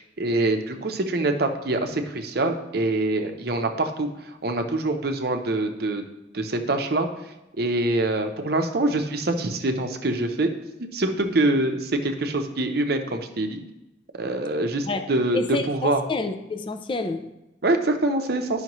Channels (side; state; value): both; normal; correlation 0.33